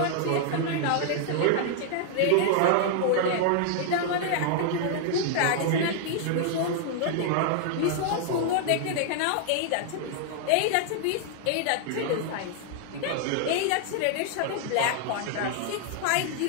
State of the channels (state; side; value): different; both; correlation 0.00